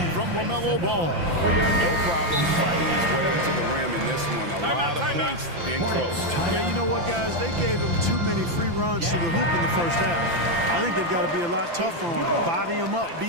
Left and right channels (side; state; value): left; late; 5.9 ms